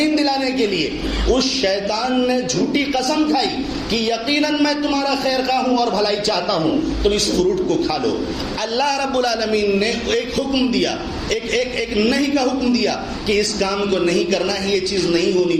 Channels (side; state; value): both; identical; correlation 1.00